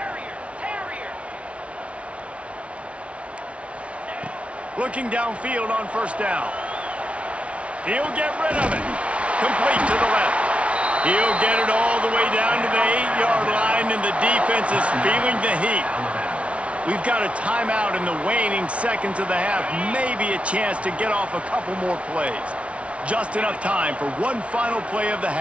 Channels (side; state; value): left; late; 0.062 ms